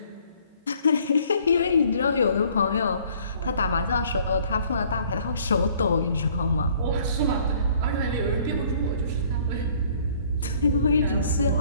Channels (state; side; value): inverted; both; correlation -0.58